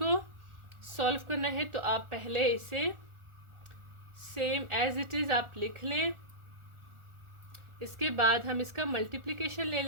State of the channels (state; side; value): late; left; 1.4 ms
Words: सॉल्व करना है, तो आप पहले इसे सेम एज इट इज़ आप लिख लें। इसके बाद हम इसका मल्टीप्लिकेशन ले